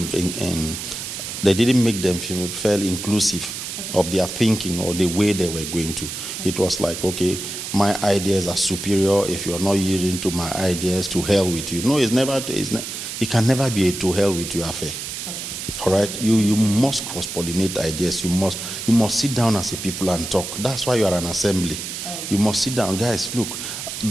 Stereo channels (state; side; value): noise; right; hiss, 7 dB below the sound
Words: didn't make them feel inclusive of their thinking or the way they were going to. It was like, okay, my ideas are superior. If you're not yielding to my ideas, to hell with you. No, it can never be a to hell with you affair. All right, you must cross-pollinate ideas. You must sit down as a people and talk. That's why you are an assembly. You must sit down, guys. Look,